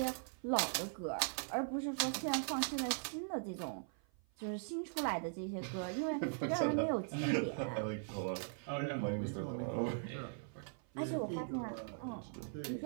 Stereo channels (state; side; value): silent; left; 51 dB below the other